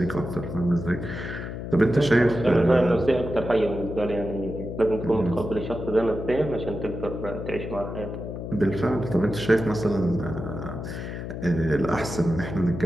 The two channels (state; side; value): noise; left; hum, 7 dB below the sound